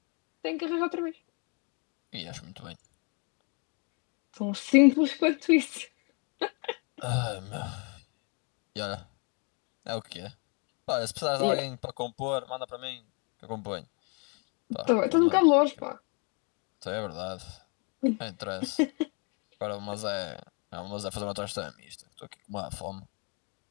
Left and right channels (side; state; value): right; quieter; 34.7 dB